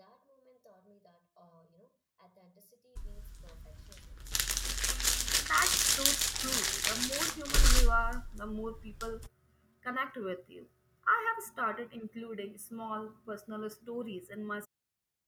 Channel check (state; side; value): identical; both; correlation 1.00